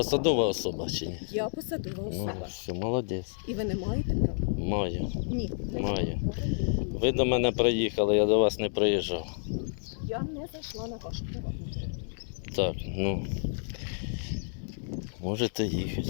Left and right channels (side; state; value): right; silent; 58 dB below the other